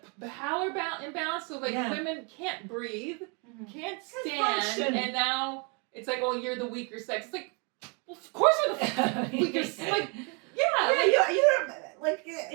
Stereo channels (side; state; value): left; quieter; 34.2 dB